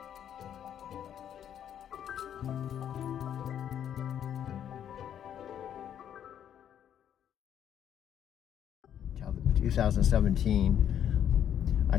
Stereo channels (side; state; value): right; quieter; 9.6 dB